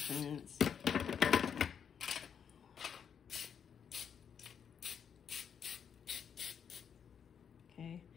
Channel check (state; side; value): quieter; right; 7.6 dB